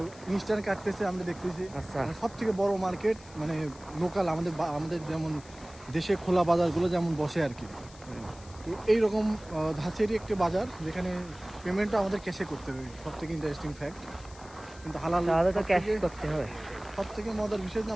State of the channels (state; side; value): noise; left; hiss, 21 dB below the sound